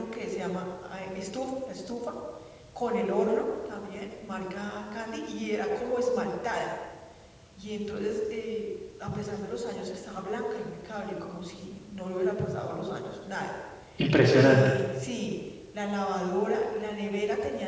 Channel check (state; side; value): identical; both; correlation 1.00